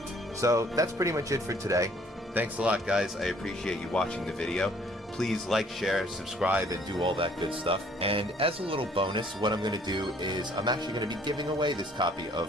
So that's pretty much it for today. Thanks a lot, guys. I appreciate you watching the video. Please like, share, subscribe, and do all that good stuff. And as a little bonus, what I'm going to do is I'm actually going to be giving away this copy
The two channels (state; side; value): normal; both; correlation 0.60